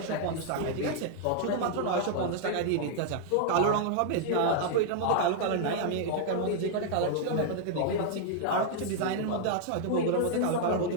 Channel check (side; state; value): both; different; correlation 0.00